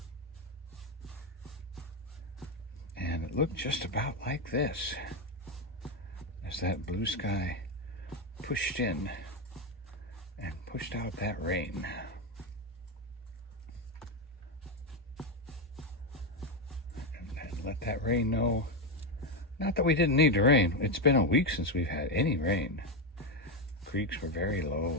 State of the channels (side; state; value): both; normal; correlation 0.09